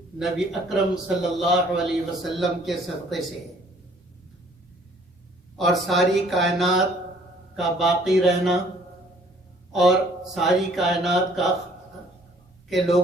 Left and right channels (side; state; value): both; normal; correlation 0.58